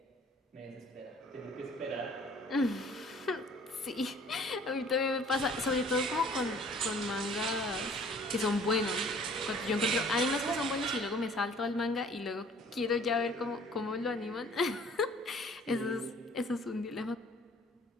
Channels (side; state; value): both; normal; correlation 0.53